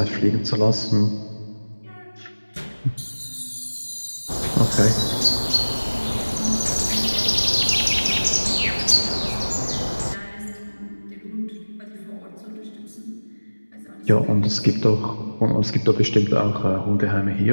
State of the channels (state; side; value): inverted; both; correlation -1.00